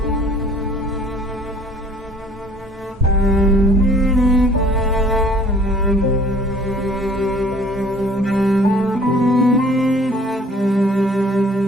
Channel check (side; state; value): both; normal; correlation 0.55